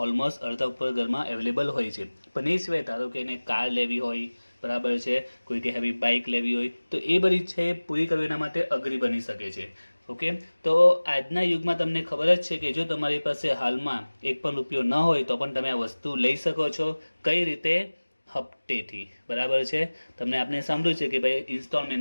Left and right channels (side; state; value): both; inverted; correlation -1.00